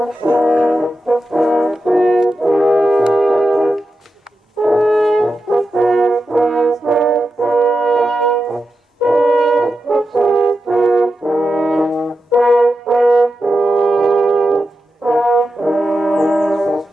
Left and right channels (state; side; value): normal; both; correlation 0.89